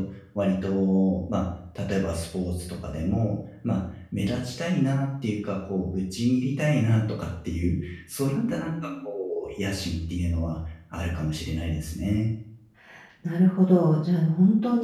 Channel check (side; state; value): both; identical; correlation 1.00